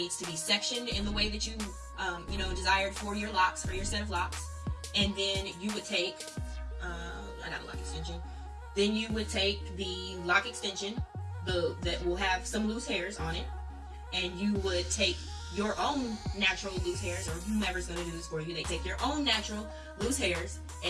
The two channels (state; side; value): identical; both; correlation 1.00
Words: to be sectioned in the way that you, desired for your locks, for your set of locks. And then you would take, I got a lock extension. Then you would take the lock extension that will have some loose hairs on it, and you would take your own natural loose hairs, or whomever's going to do this for you. They take your own natural loose hairs,